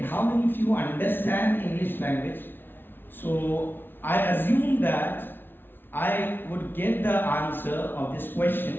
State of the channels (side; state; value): right; late; 0.10 ms